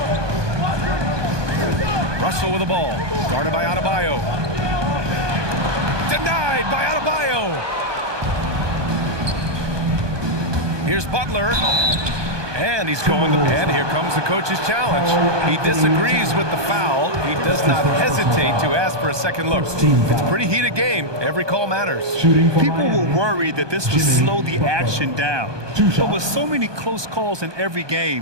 Russell with the ball, guarded by Adebayo. Denied by Adebayo. Here's Butler. And he's going to, and here comes the coach's challenge. He disagrees with the foul. He does not hesitate to ask for a second look. It's a pretty heated game. Every call matters. People were worried that this would slow the action down. But with so many close calls in every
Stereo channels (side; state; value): left; late; 1.2 ms